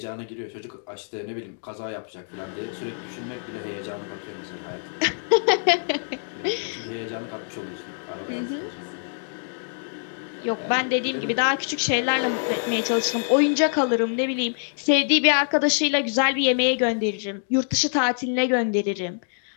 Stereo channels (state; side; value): silent; right; digital silence